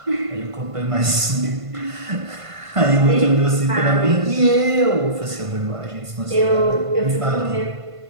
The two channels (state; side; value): late; left; 1.5 ms